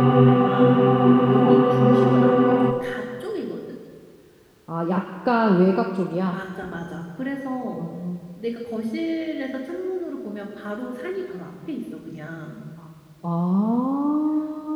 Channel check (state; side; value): identical; both; correlation 1.00